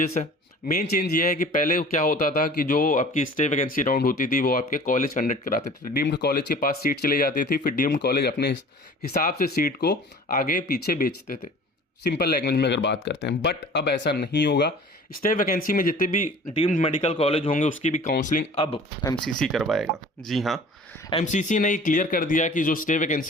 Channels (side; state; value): both; normal; correlation 0.45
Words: है। मेन चेंज ये है कि पहले क्या होता था कि जो आपकी स्टे वैकेंसी राउंड होती थी वो आपके कॉलेज कंडक्ट कराते थे, डीम्ड कॉलेज के पास सीट चली जाती थी, फिर डीम्ड कॉलेज अपने हिसाब से सीट को आगे पीछे बेचते थे, सिंपल लैंग्वेज में अगर बात करते हैं। बट अब ऐसा नहीं होगा। स्टे वैकेंसी में जितने भी डीम्ड मेडिकल कॉलेज होंगे उसकी भी काउंसलिंग अब एमसीसी करवाएगा। जी हाँ, एमसीसी ने क्लियर कर दिया कि जो स्टे